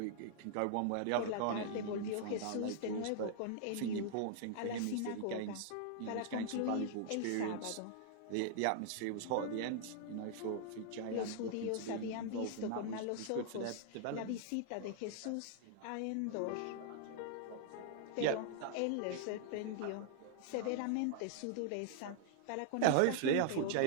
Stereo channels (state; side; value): different; both; correlation -0.01